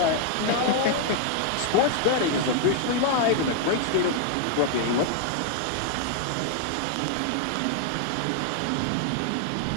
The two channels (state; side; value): different; both; correlation 0.00